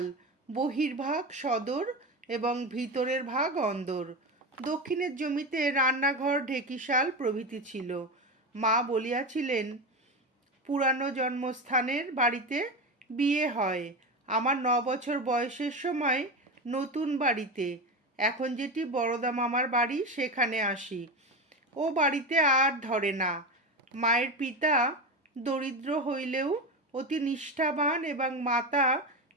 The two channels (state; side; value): normal; both; correlation 0.19